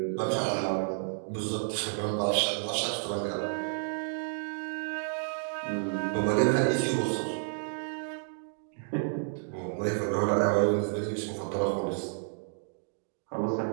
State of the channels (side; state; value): left; silent; digital silence